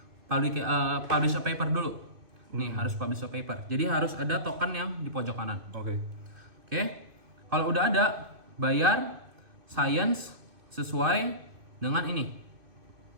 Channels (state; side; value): late; left; 2.6 ms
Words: publish a paper dulu. Nih harus publish a paper. Jadi harus ada token yang di pojok kanan. Oke. Oke. Kalau udah ada, bayar science sesuai dengan ini.